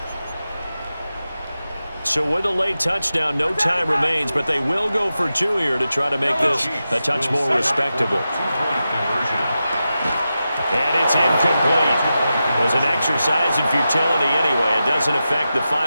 So with a late touchdown, no time remains, but they will go for two here to try to make this a touch more respectable. And it's incomplete. It was an exercise in futility anyway. It doesn't affect the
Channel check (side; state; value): both; inverted; correlation -0.91